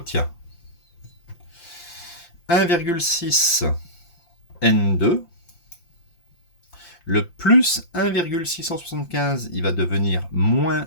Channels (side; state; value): right; late; 5.8 ms